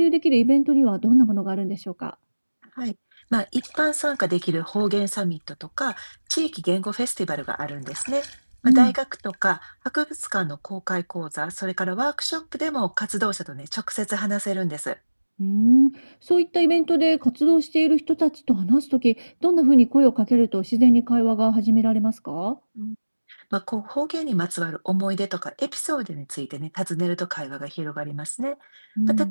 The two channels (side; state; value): both; inverted; correlation -1.00